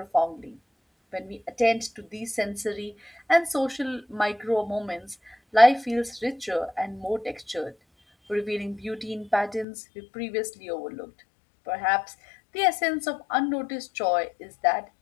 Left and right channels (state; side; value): drops out; right; at 9.7 s